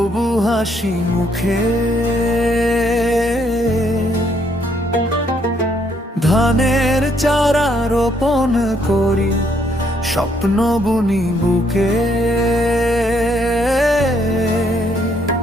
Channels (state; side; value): normal; both; correlation 0.70